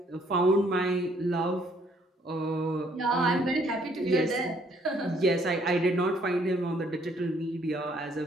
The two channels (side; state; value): both; normal; correlation 0.65